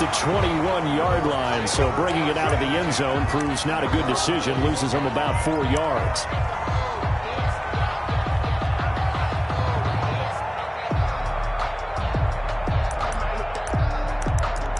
21-yard line, so bringing it out of the end zone proves not a good decision, loses him about 4 yards.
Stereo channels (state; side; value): identical; both; correlation 1.00